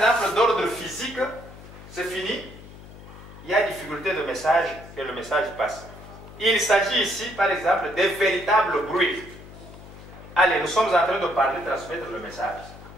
d'ordre physique, c'est fini, il y a difficulté de message, que le message passe. Il s'agit ici, par exemple, des véritables bruits. Allez, nous sommes en train de parler, transmettre le message.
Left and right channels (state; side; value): noise; left; hum, 17 dB below the sound